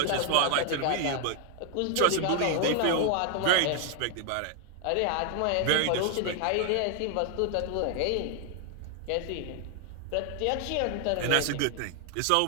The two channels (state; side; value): different; both; correlation 0.00